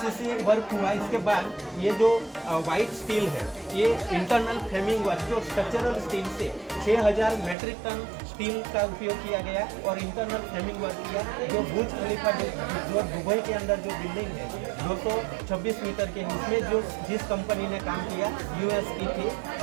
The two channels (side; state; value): left; drops out; at 7.6 s